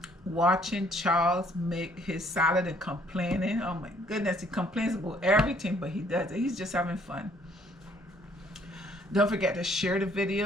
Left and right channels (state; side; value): normal; both; correlation 0.63